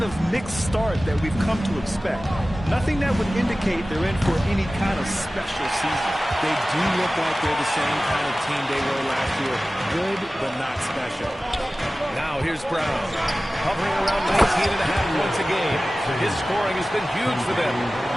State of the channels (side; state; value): both; normal; correlation 0.97